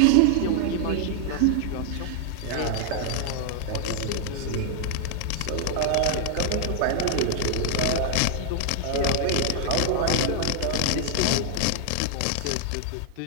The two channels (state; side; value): different; both; correlation -0.01